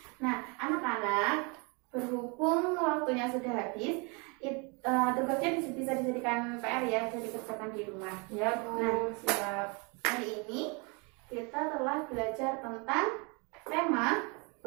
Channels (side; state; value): left; quieter; 31.4 dB